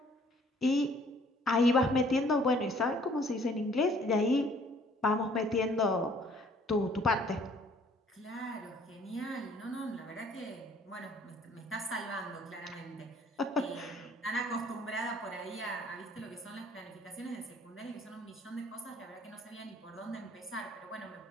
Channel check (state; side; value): normal; both; correlation 0.59